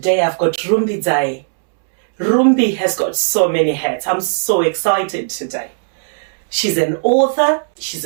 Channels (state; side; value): silent; left; 69 dB below the other